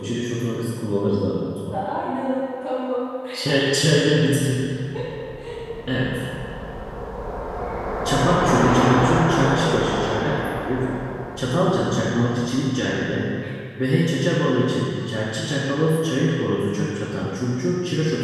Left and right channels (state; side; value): identical; both; correlation 1.00